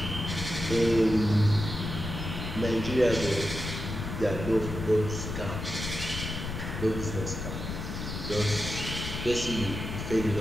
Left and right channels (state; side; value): noise; left; rumble, 6 dB below the sound